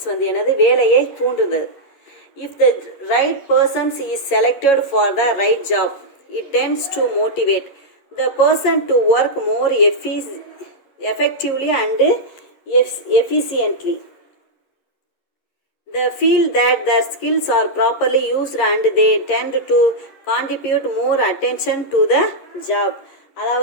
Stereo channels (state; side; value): late; right; 11 ms